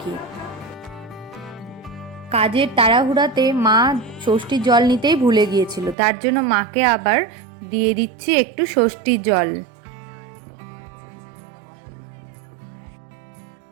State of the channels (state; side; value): drops out; left; at 6.0 s